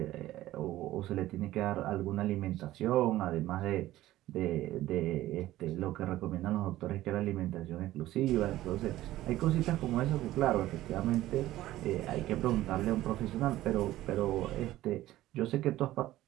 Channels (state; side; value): quieter; left; 15.2 dB